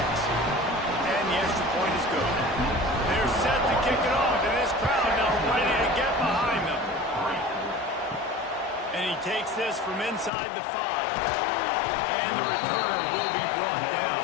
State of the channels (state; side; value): drops out; right; at 10.3 s